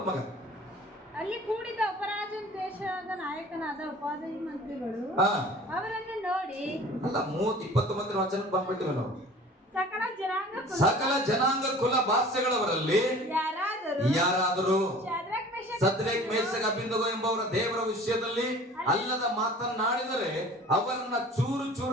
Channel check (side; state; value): both; normal; correlation 0.45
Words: ಮಗ. ಅಲ್ಲಿ ಕೂಡಿದ ಅಪರಾಜನ ದೇಶದ ನಾಯಕನಾದ ಉಪಾಧ್ಯಾಯ ಮಂತ್ರಿಗಳು ಅವರನ್ನು ನೋಡಿ, ಅಲ್ಲ 29 ವಚನಕ್ಕೆ ಬಂದ್ಬಿಟ್ಟಿವೆ ನಾವು. ಸಕಲ ಜನಾಂಗ ಕುಲ ಭಾಷೆಗಳವರಲ್ಲಿ ಯಾರಾದರೂ ಸದ್ರೇಕ್ ಮೇಷಕ್ ಅಬೇದ್ನೆಗೋ ಎಂಬವರ ದೇವರ ವಿಷಯದಲ್ಲಿ ಅಲ್ಲದ ಮಾತನಾಡಿದರೆ ಅವರನ್ನ ಚೂರು